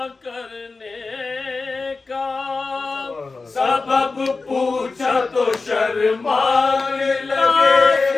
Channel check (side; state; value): right; quieter; 3.9 dB